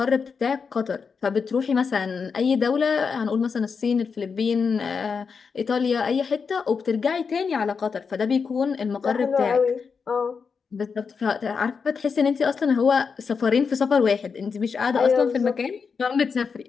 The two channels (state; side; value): quieter; right; 5.6 dB